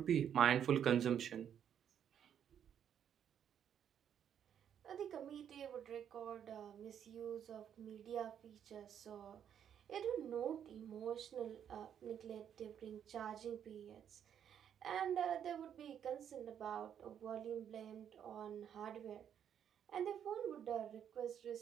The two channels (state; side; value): quieter; left; 9.0 dB